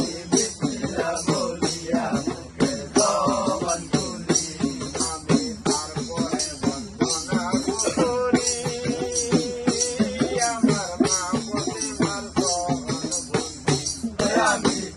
বিসমিল্লাহ বলিয়া মুখের জবান খুলি। আমি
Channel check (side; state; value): both; identical; correlation 1.00